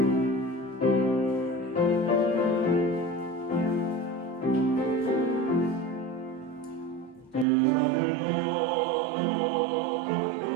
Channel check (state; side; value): drops out; left; at 7.5 s